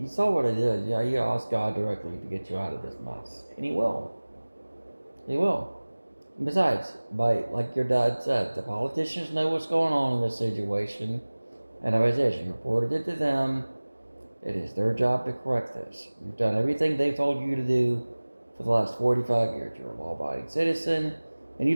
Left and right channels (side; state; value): both; inverted; correlation -1.00